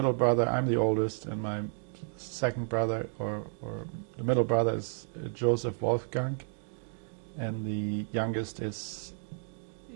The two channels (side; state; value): left; silent; digital silence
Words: brother, I'm the oldest, and my second brother, or the middle brother, is Joseph Wolfgang, and the youngest is